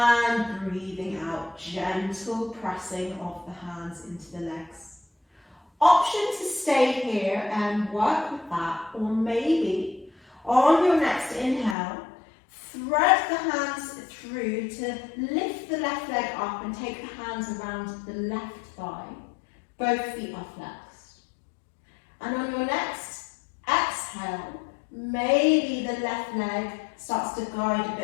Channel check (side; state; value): right; drops out; at 11.8 s